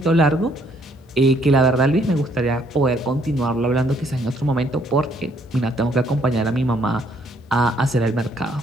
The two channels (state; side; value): normal; both; correlation 0.67